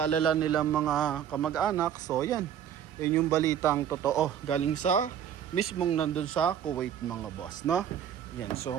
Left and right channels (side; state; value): left; quieter; 9.4 dB